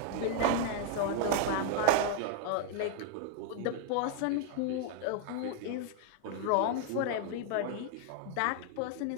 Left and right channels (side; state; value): both; different; correlation 0.00